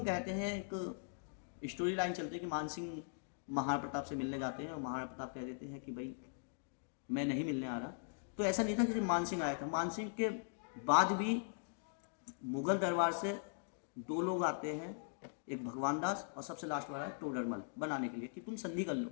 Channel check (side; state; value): right; silent; digital silence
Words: कहते हैं, एक स्टोरी लाइन चलती है कि मान सिंह महाराणा प्रताप से मिलने जाते हैं और महाराणा प्रताप कह देते हैं कि भाई मैं नहीं मिलने आ रहा। तो ऐसा नहीं था कि मान सिंह आया था, मान सिंह के बाद भी मुगल दरबार से 2 लोग आते हैं, एक भगवान दास और सबसे लास्ट वाला है टोडरमल, बनाने के लिए कि तुम संधि कर लो।